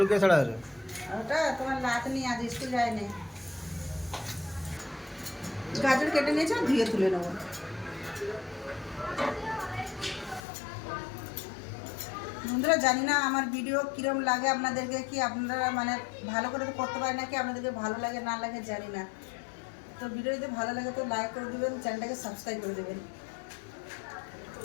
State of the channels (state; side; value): drops out; right; at 10.4 s